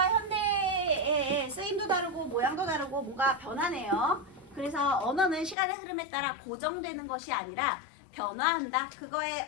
현대의 쓰임도 다르고 모양도 다르고 뭔가 변하네요. 그래서 언어는 시간의 흐름에 따라 고정되는 것이 아니라 변화한다. 그거의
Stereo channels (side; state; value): right; drops out; at 5.6 s